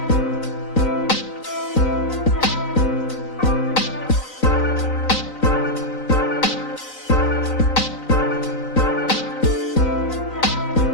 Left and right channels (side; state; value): right; late; 3.9 ms